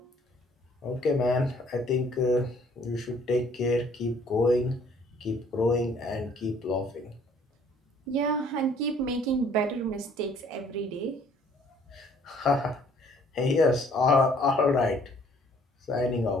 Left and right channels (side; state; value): both; normal; correlation 0.59